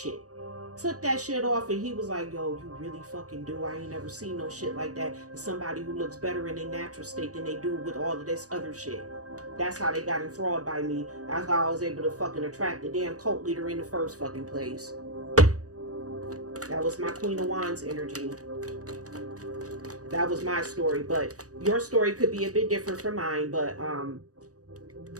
Took that shit off and he was like, yo, you really fucking do. I ain't never seen no shit like that. It's somebody who looks better in their natural state than they do with all of this other shit. That's how they got enthralled by me. That's how I was able to fucking attract the damn cult leader in the first fucking place. That was my Queen of Wands energy. That was my story, but your story could be a bit different from mine, but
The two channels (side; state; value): left; late; 0.66 ms